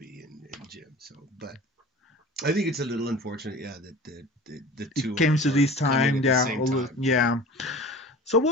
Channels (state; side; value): normal; both; correlation 0.40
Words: and Jim. So, but I think it's a little unfortunate, that the two came to this time, time. So,